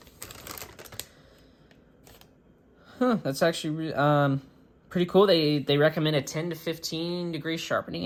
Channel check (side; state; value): both; identical; correlation 1.00